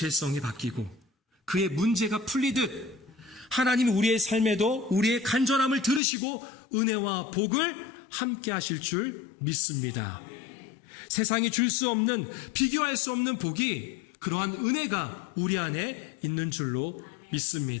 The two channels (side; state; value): right; drops out; at 6.0 s